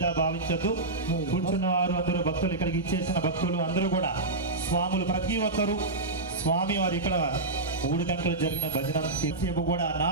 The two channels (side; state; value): left; quieter; 3.1 dB